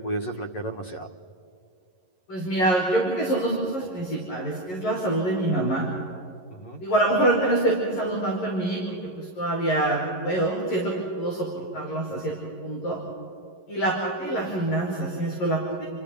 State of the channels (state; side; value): late; right; 11 ms